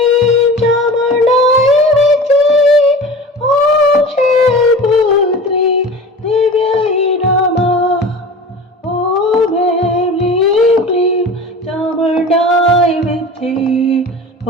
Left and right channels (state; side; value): normal; both; correlation 0.36